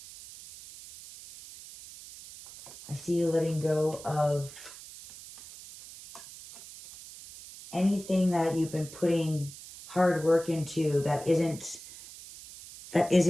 I see you letting go of anything that you've been putting hard work into that isn't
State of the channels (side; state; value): right; noise; hiss, 16 dB below the sound